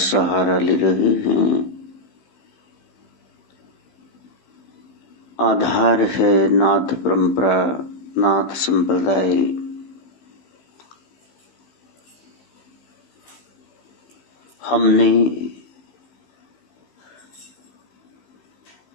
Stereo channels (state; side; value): late; right; 15 ms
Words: सहारा ले रहे हैं। आधार है नाथ परंपरा, नाथ संप्रदाय। हमने